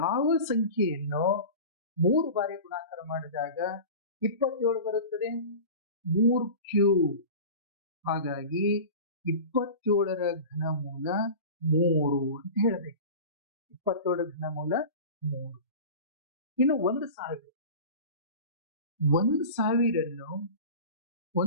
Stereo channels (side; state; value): both; inverted; correlation -0.34